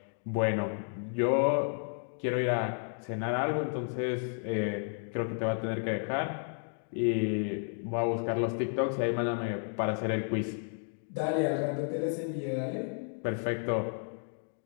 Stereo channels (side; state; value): right; silent; 56 dB below the other